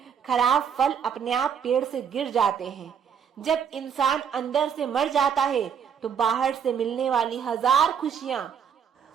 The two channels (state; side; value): quieter; left; 7.6 dB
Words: खराब फल अपने आप पेड़ से गिर जाते हैं। जब इंसान अंदर से मर जाता है तो बाहर से मिलने वाली हजार खुशियां